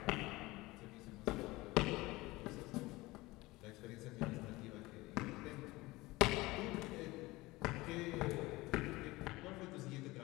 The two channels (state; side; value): quieter; right; 20.6 dB